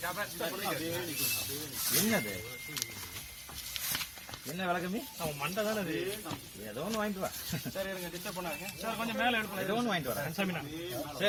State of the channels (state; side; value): identical; both; correlation 1.00